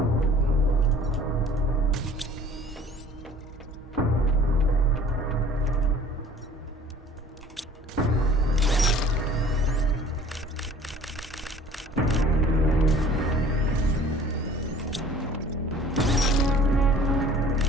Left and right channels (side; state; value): both; normal; correlation 0.50